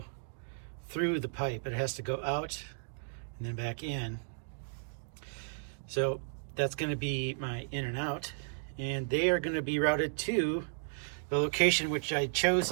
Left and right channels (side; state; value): left; silent; digital silence